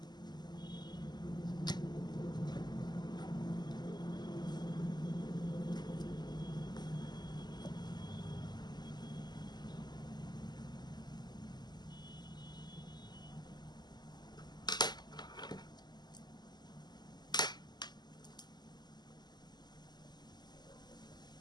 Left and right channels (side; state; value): right; late; 0.21 ms